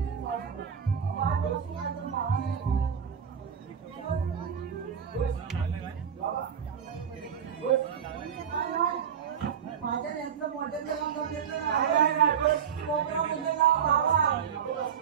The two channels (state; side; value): quieter; left; 7.8 dB